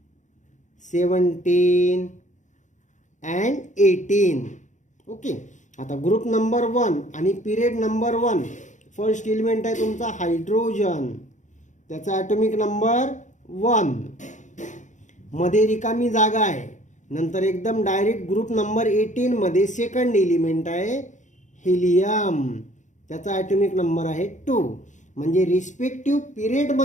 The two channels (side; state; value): right; late; 0.35 ms